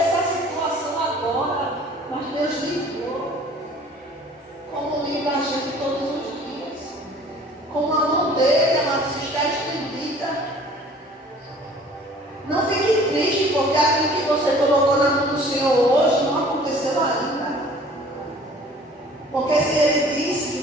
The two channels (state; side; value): normal; both; correlation 0.50